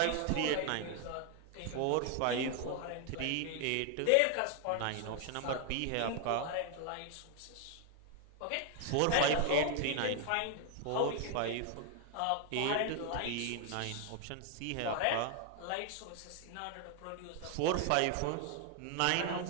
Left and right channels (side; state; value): both; different; correlation 0.00